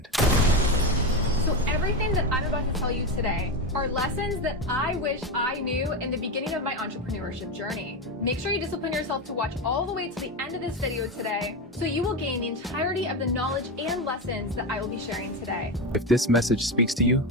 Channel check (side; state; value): both; normal; correlation 0.16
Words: So everything that I'm about to tell you today are lessons that I wish I knew in the beginning of my entrepreneurship journey. Make sure you discipline yourself to watch all the way to the end of this video today, so you will gain the entirety of the knowledge and lessons that I will be sharing today. If this message speaks to you,